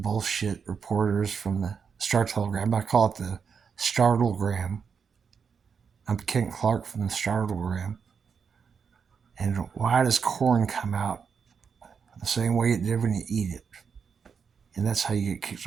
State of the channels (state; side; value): quieter; left; 6.3 dB